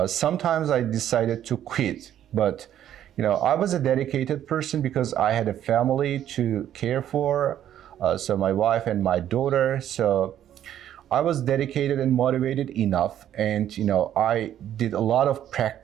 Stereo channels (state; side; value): quieter; left; 11.0 dB